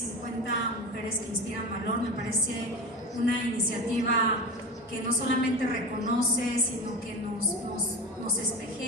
mujeres que inspiran valor. Me parece una iniciativa que no solamente reconoce, sino que nos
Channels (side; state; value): both; normal; correlation 0.27